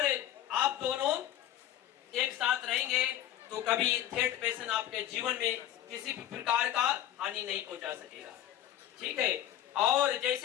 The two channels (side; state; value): right; quieter; 12.0 dB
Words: आप दोनों एक साथ रहेंगे तो कभी थर्ड पर्सन आपके जीवन में किसी भी प्रकार का हानि नहीं पहुंचा सकेगा, ठीक है। और